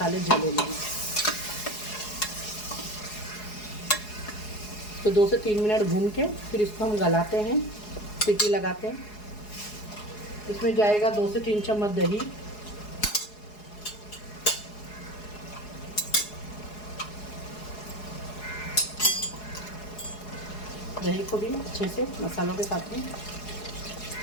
जले लेंगे। तो 2 से 3 मिनट भून के फिर इसको हम गलाते हैं, सीटी लगाते हैं। इसमें जाएगा 2 से 3 चम्मच दही, दही को भी अच्छे से मसालों के साथ में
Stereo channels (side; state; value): right; late; 4.8 ms